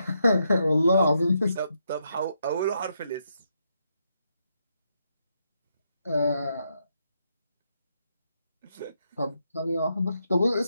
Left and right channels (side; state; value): both; inverted; correlation -0.80